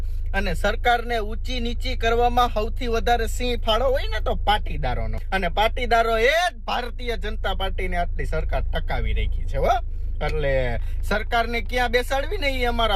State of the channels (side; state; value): both; identical; correlation 1.00